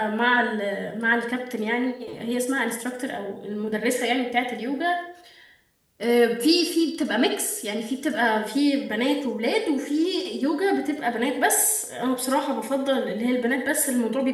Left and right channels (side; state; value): both; identical; correlation 1.00